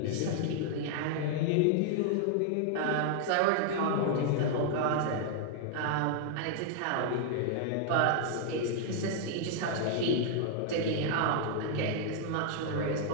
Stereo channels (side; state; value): both; different; correlation 0.00